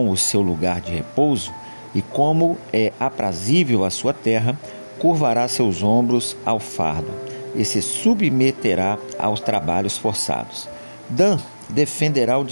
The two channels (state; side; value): inverted; both; correlation -1.00